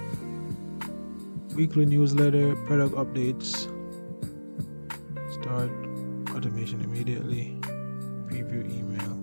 weekly newsletter, product updates. Start automation immediately. Preview email.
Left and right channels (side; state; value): both; inverted; correlation -1.00